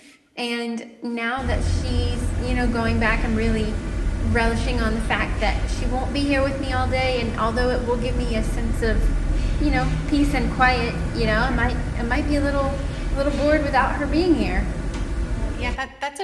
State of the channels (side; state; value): both; identical; correlation 1.00